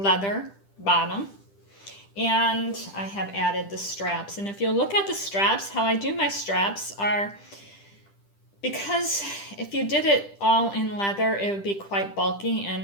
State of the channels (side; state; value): right; late; 10 ms